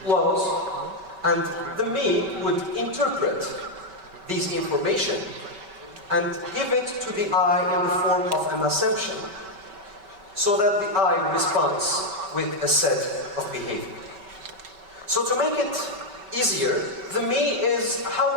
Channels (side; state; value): left; late; 5.2 ms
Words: laws, and the me would interpret these information and give it to the I in the form of an assumption, so that the I responds with a set of behavior. So to make it easier, the me is